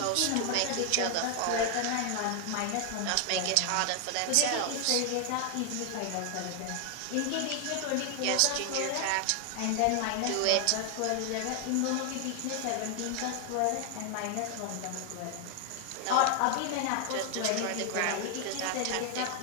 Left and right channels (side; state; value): both; different; correlation 0.00